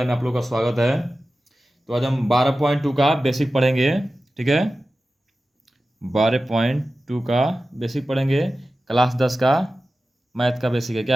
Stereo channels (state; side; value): normal; both; correlation 0.94